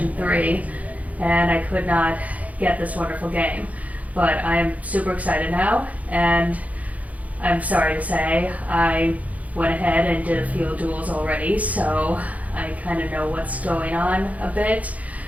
3 and I could not get this wonderful game. But I am super excited now, and I'm sorry to say I went ahead and did a few duels already, so I kind of know what's going on a bit.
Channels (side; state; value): left; late; 0.071 ms